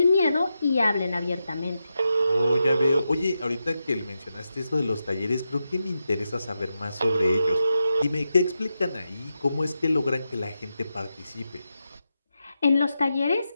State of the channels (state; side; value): inverted; both; correlation -0.88